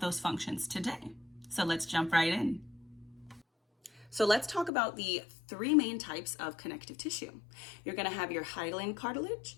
those functions today. So let's jump right in. So let's talk about the three main types of connective tissue. You're going to have your hyaline cartilage,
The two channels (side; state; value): right; drops out; at 4.7 s